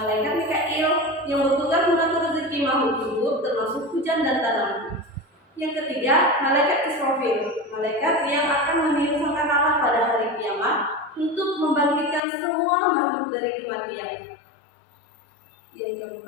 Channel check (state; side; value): drops out; right; at 12.2 s